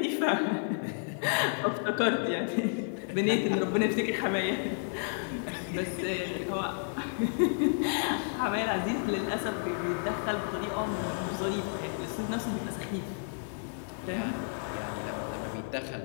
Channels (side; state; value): right; silent; digital silence